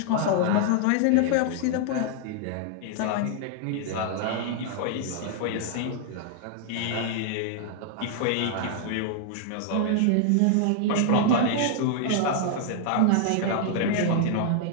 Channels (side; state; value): both; different; correlation 0.00